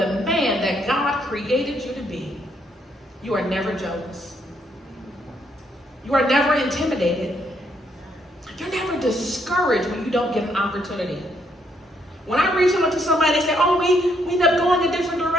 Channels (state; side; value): normal; both; correlation 0.73